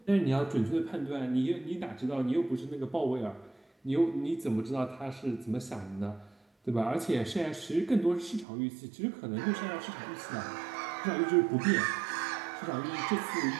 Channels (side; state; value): left; drops out; at 8.5 s